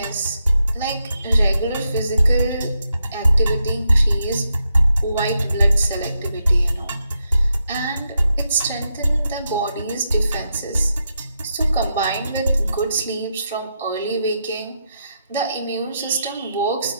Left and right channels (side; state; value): both; inverted; correlation -0.83